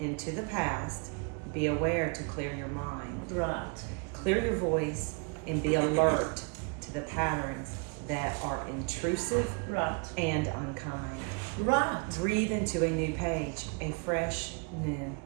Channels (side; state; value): left; quieter; 34.7 dB